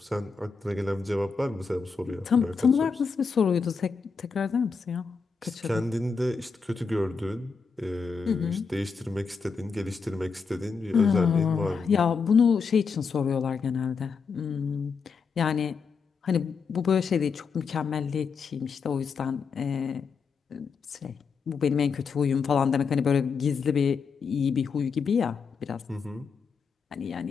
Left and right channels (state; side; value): quieter; right; 5.3 dB